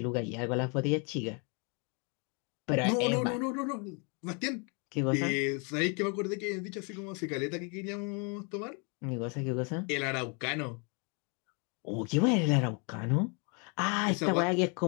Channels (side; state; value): right; quieter; 35.2 dB